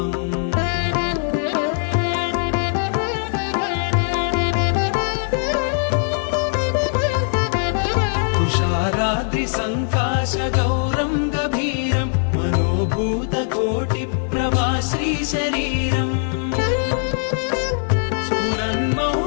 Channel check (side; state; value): right; silent; digital silence